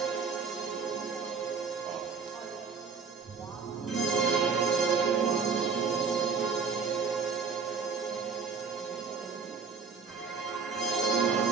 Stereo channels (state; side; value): quieter; left; 5.4 dB